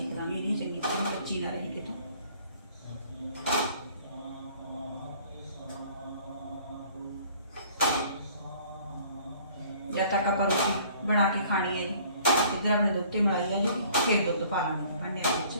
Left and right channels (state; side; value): inverted; both; correlation -0.54